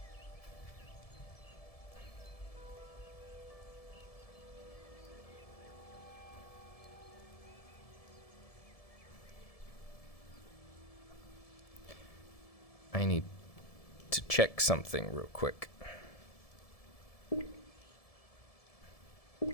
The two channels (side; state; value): right; late; 1.7 ms